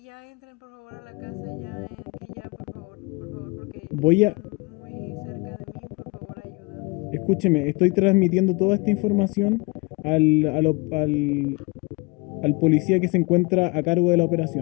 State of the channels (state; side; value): quieter; right; 27.2 dB